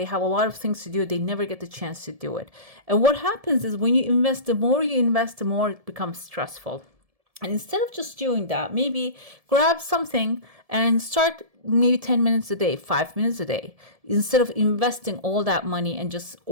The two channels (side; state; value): left; late; 1.7 ms